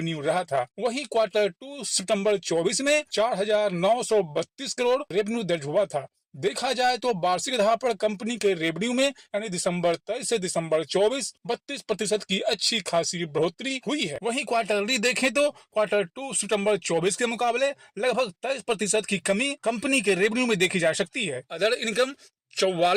रहा था। वहीं Q2 सितंबर 24 में 4,932 करोड़ रेवेन्यू दर्ज हुआ था। देखा जाए तो वार्षिक आधार पर कंपनी के रेवेन्यू में यानी दिसंबर 23 से दिसंबर 24 32% की अच्छी खासी बढ़ोतरी हुई है। वहीं क्वार्टरली देखें तो Q2 सितंबर 24 के मुकाबले लगभग 23% की कमी कंपनी के रेवेन्यू में देखी जा सकती है। अदर इनकम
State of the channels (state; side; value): identical; both; correlation 1.00